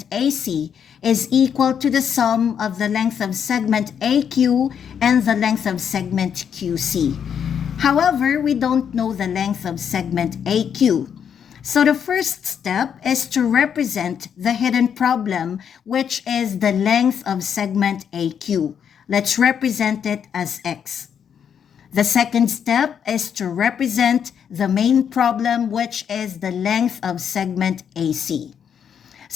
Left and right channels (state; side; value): quieter; right; 7.9 dB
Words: AC is equal to the sum of the length of segment AQ and the length of segment QC. However, we don't know the length of segment AQ. So the first step is to represent the hidden problem, which is the length of segment AQ. Let's represent it as X. The second step is to represent the main problem, which is the length of segment AC.